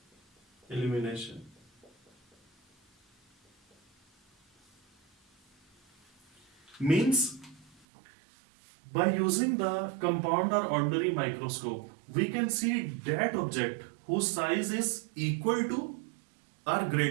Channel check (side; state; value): left; drops out; at 7.9 s